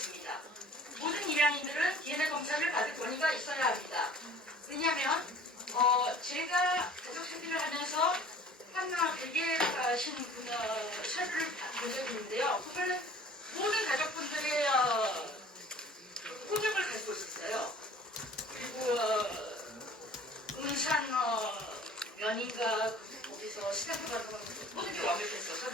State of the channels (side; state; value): both; normal; correlation 0.49